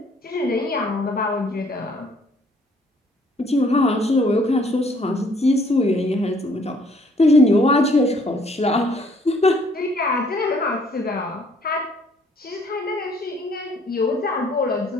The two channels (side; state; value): both; normal; correlation 0.62